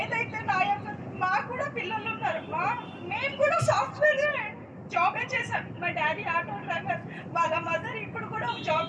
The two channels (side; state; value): both; identical; correlation 1.00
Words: మాకు కూడా పిల్లలు ఉన్నారు. మేము కూడా సాఫ్ట్వేర్ జాబే చేశాం. మా డాడీ ఆటో డ్రైవర్, వాళ్ళ మదర్ ఇప్పుడు కూడా జాబ్